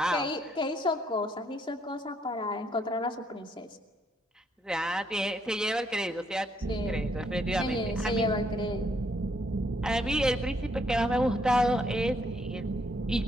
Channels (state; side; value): normal; both; correlation 0.72